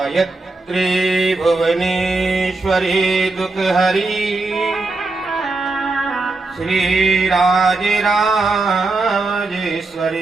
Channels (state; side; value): quieter; left; 3.4 dB